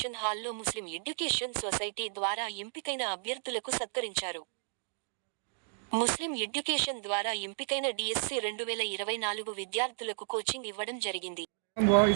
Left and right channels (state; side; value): silent; left; digital silence